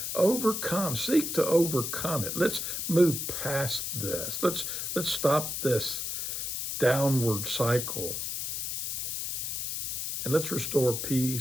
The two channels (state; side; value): noise; left; hiss, 3 dB below the sound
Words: seek to overcome it. Let's move past this. Let's stop this downward cycle. And let's restore